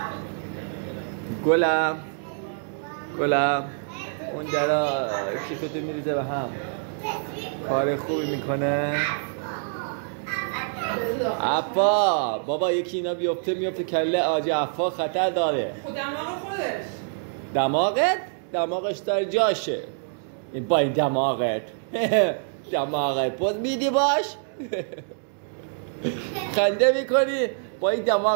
گلم اون درا کیفتو میریزه به هم. کار خوبی میکنه. عفا بابا یکی اینا بیفته میفته کله آجی عفا خطر داره. خود دماغ خودش. دماغش داره جاشه. این با این دماغت پوز میدی باش. خنده میکنی با این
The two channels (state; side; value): silent; left; digital silence